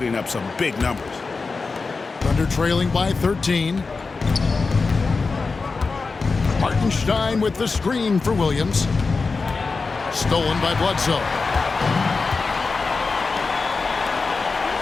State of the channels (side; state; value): right; quieter; 4.2 dB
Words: up some big numbers. Thunder trailing by 13. Hartenstein with the screen for Williams. Stolen by Bledsoe.